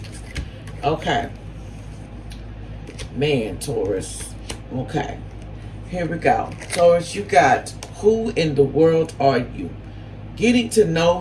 Okay. Man, Taurus. Okay. Here we go. Taurus, you got, who in the world are you? Getting to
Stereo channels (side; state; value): both; identical; correlation 1.00